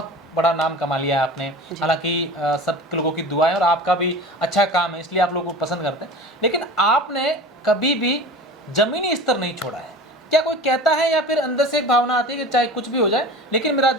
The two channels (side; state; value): both; normal; correlation 0.35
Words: बड़ा नाम कमा लिया है आपने। हालांकि सब लोगों की दुआ है और आपका भी अच्छा काम है, इसलिए आप लोगों को पसंद करते हैं, लेकिन आपने कभी भी जमीनी स्तर नहीं छोड़ा है। क्या कोई कहता है, या फिर अंदर से एक भावना आती है कि चाहे कुछ भी हो जाए, लेकिन मेरा